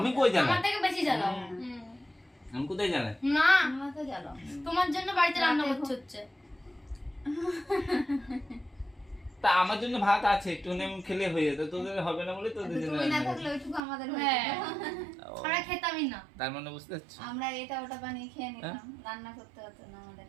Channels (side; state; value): left; drops out; at 13.8 s